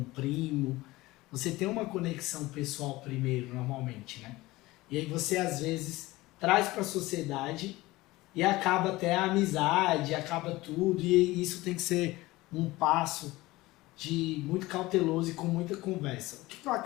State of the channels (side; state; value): right; quieter; 19.4 dB